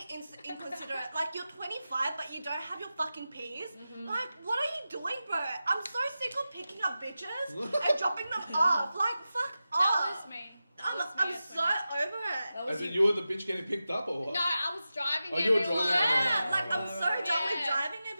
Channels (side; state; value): both; inverted; correlation -0.93